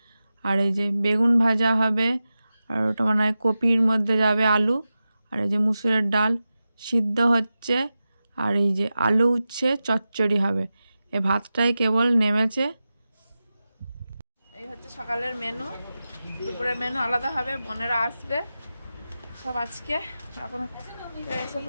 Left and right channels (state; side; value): inverted; both; correlation -0.93